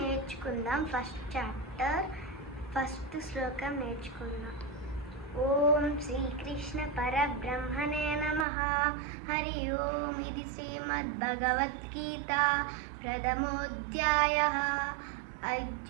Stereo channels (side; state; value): left; drops out; at 8.5 s